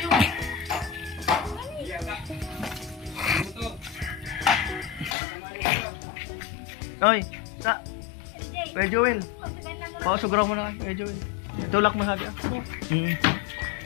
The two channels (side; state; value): right; drops out; at 5.2 s